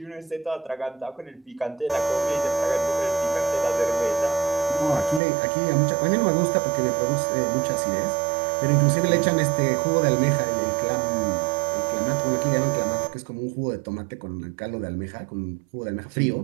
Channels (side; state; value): left; drops out; at 5.2 s